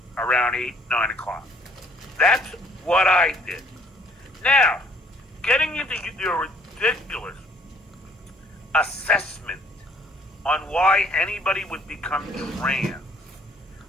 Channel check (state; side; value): normal; both; correlation 0.61